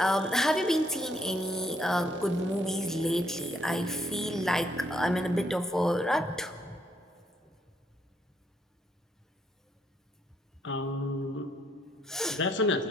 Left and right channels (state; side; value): normal; both; correlation 0.72